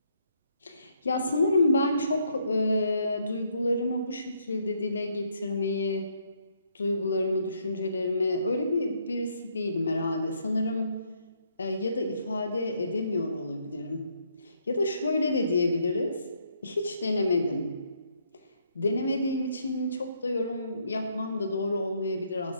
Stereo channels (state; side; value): inverted; both; correlation -0.72